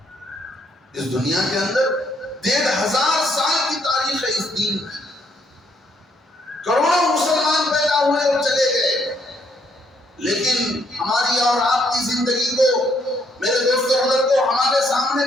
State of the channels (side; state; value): both; normal; correlation 0.71